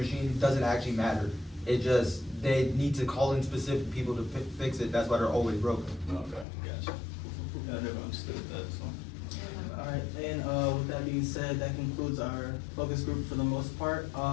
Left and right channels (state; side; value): drops out; right; at 6.5 s